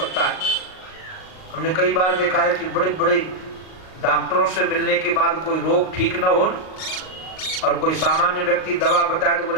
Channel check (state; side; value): late; right; 38 ms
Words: है। हमने कई बार देखा है कि बड़े बड़े डॉक्टरों से मिलने के बाद कोई रोग ठीक ना हो और कोई सामान्य व्यक्ति दवा बताए तो